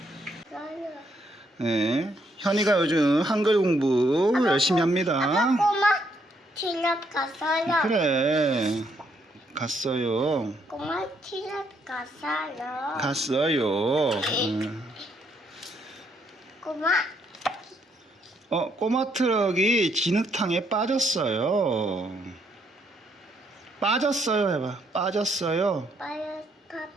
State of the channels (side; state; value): both; normal; correlation 0.73